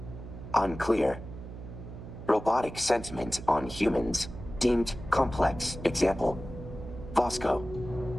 Unclear. Robotic sentiment on humans deemed complex. Example. Vasco.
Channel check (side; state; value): right; noise; hum, 12 dB below the sound